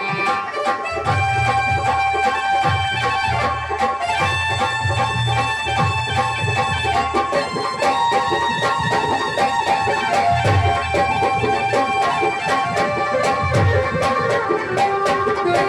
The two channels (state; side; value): identical; both; correlation 1.00